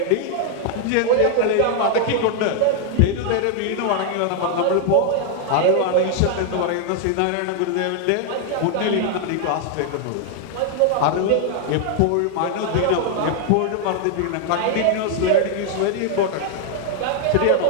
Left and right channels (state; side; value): different; both; correlation 0.00